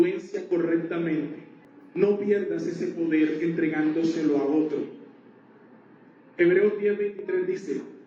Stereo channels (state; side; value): identical; both; correlation 1.00